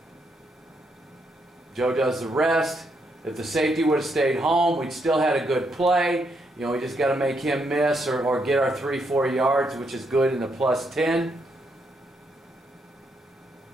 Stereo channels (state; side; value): normal; both; correlation 0.78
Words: Joe does the rest. If the safety would have stayed home, we'd still had a good play. We just got to make him miss or get our 3-4 yards, which is good in the +10.